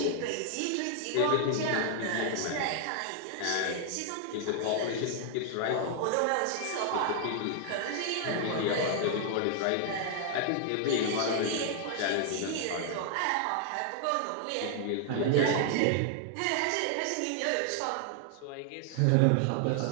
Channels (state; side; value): different; both; correlation 0.00